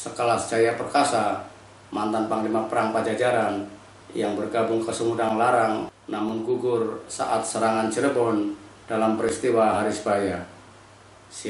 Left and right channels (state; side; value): identical; both; correlation 1.00